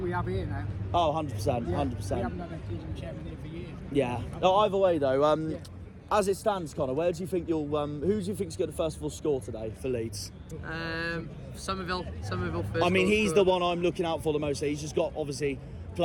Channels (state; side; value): identical; both; correlation 1.00